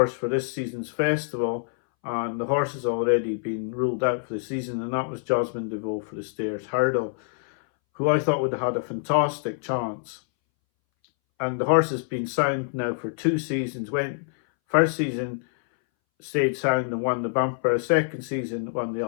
for this season's festival, and the horse has already been ruled out for the season, and that was Jasmine DeVoe for the Stairs Hurdle, who I thought would have had a fantastic chance. And the horse has been sound now for 2 seasons. First season stayed sound and won the bumper. Second season won the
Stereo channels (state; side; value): silent; right; 61 dB below the other